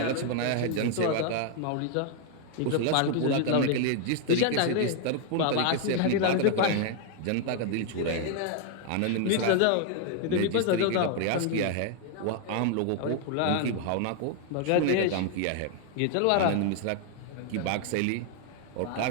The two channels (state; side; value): different; both; correlation 0.00